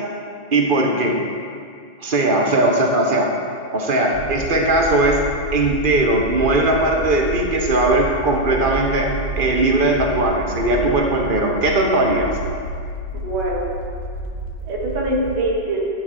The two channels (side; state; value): left; late; 2.4 ms